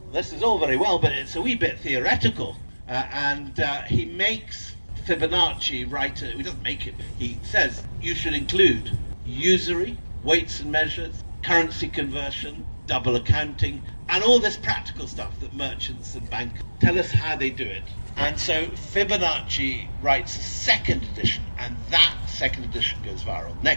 this is all very well, but it's a wee bit theoretical. And he makes Fibonacci write, he doesn't make it, he says you should include usury, weights and measures, currency conversion, double accounting, and all this practical stuff that merchants and bankers tell us how they do it. And so Fibonacci writes a second edition, and that second edition goes viral.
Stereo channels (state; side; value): inverted; both; correlation -1.00